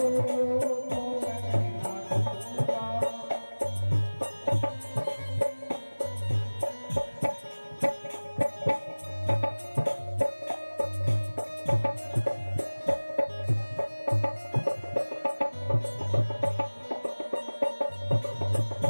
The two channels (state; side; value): inverted; both; correlation -1.00